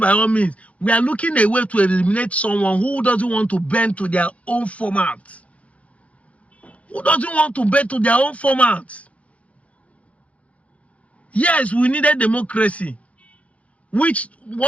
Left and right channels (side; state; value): right; late; 0.064 ms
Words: all means, we are looking a way to eliminate someone who doesn't want to bend to their own format. Who doesn't want to bend to their own format? Yes, we needed democracy. Which